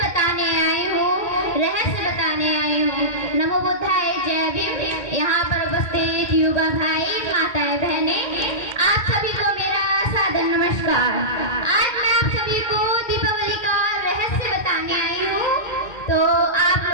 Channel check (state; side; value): late; right; 2.1 ms